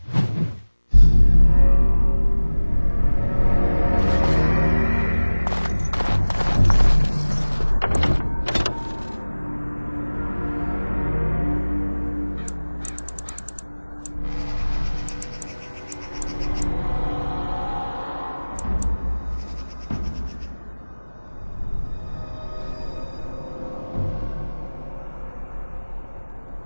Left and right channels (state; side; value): inverted; both; correlation -1.00